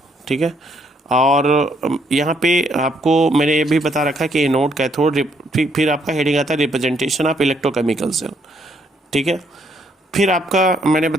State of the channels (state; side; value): normal; both; correlation 0.70